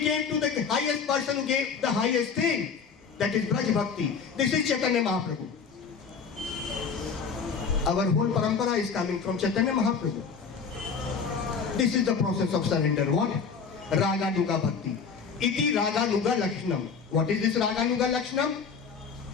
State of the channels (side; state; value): right; quieter; 5.8 dB